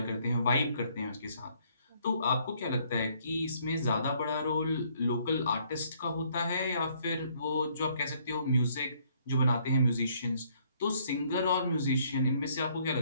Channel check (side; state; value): both; inverted; correlation -0.65